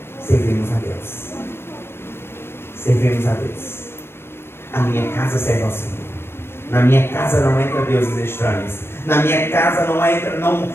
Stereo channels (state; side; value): late; right; 0.12 ms